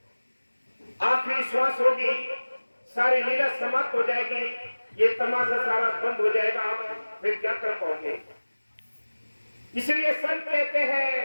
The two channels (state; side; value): inverted; both; correlation -1.00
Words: आखिरी श्वास होगी, सारी लीला समाप्त हो जाएगी, ये तमाशा सारा बंद हो जाएगा, फिर क्या कर पाओगे? इसलिए संत कहते हैं